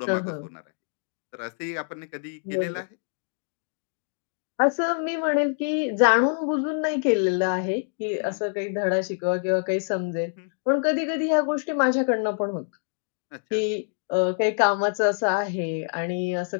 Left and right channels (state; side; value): silent; right; digital silence